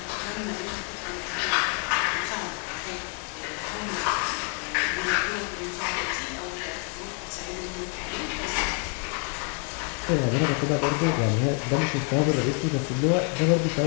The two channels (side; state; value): right; quieter; 38.8 dB